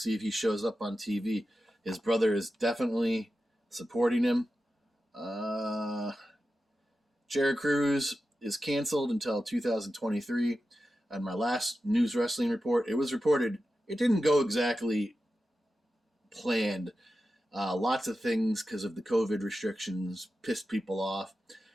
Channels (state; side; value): normal; both; correlation 0.92